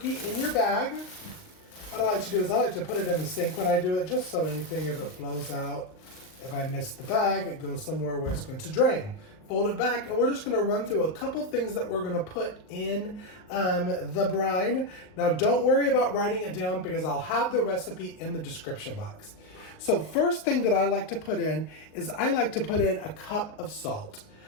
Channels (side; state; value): right; late; 38 ms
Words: in your bag, what I like to do is I like to put it in the sink when I do it, just so anything, if it flows out, if I miss the bag, it goes somewhere where it's going to drain. Fold it back, and we're just going to run through a couple things that we're going to put in the brine. Now, don't worry about writing it down because I'll have the recipe in the description box. So first thing that I like to put in is I like to put in a cup of salt.